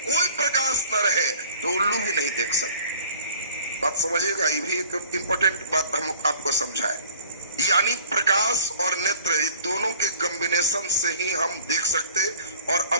प्रकाश न रहे तो उल्लू भी नहीं देख सकते। बात समझिएगा, ये भी एक इम्पोर्टेंट बात हम आपको समझाए। यानी प्रकाश और नेत्र दोनों के कॉम्बिनेशन से ही हम देख सकते। और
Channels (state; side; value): inverted; both; correlation -0.50